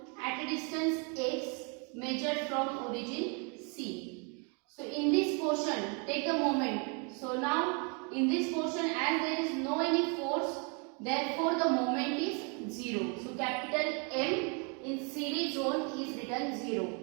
at a distance x measured from origin C. So in this portion, take a moment. So now in this portion, as there is no any force, therefore the moment is 0. So capital M in CD zone is written 0.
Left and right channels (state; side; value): quieter; left; 34.9 dB